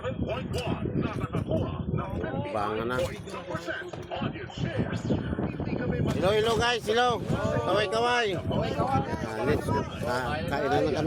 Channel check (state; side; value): identical; both; correlation 1.00